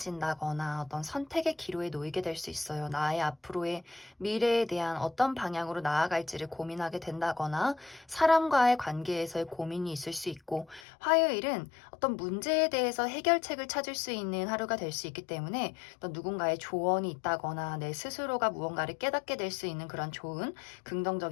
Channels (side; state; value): right; drops out; at 10.8 s